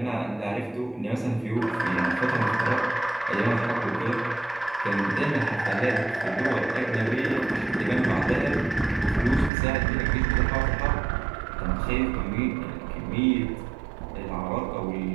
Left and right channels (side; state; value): left; drops out; at 9.5 s